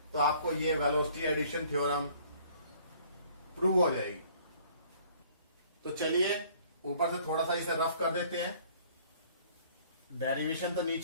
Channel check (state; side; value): inverted; both; correlation -0.56